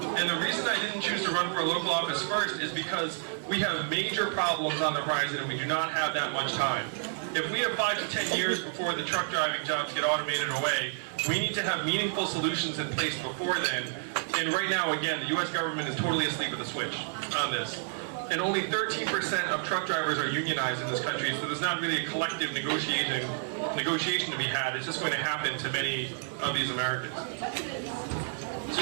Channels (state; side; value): silent; left; 58 dB below the other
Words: the reason I didn't choose to run for a local office first is because we have major problems on the horizon and we do not have that much time. If we have 5 to 10 years before the truck driving jobs get automated away, we need to have meaningful solutions in place before then. And right now, again, the U.S. government is totally asleep at the switch on this. And only 13% of truck drivers are unionized in this country, so there's not really a collective negotiation to be had. It's just going to happen to many of these Americans.